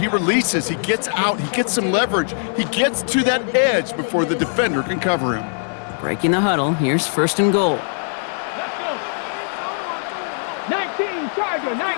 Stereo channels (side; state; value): right; silent; 59 dB below the other